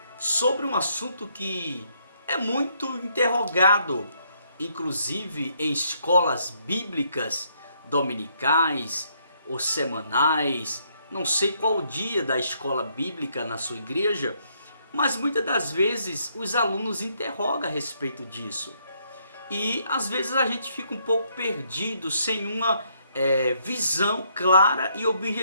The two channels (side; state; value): both; inverted; correlation -0.71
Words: sobre um assunto que é muito interrogado, inclusive em escolas bíblicas dominicais ou semanais. Não sei qual o dia da escola bíblica na sua igreja, mas muitas das vezes os alunos interrogam a respeito disso. E às vezes a gente fica um pouco perdido, sem uma visão clara e